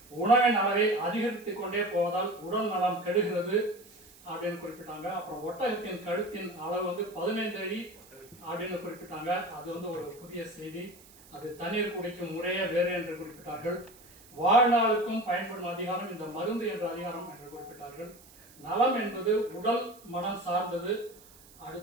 உணவின் அளவை அதிகரித்துக் கொண்டே போவதால் உடல் நலம் கெடுகிறது அப்படின்னு குறிப்பிட்டாங்க. அப்புறம் ஒட்டகத்தின் கழுத்தின் அளவு 15 அடி அப்படின்னு குறிப்பிட்டாங்க. அது ஒரு புதிய செய்தி. அது தண்ணீர் குடிக்கும் முறையே வேறு என்று குறிப்பிட்டார்கள். வாழ்நாளுக்கும் பயன்படும் அதிகாரம் இந்த மருந்து என்ற அதிகாரம் என்று குறிப்பிட்டார்கள். நலம் என்பது உடல் மனம் சார்ந்தது.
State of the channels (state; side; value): noise; right; hiss, 23 dB below the sound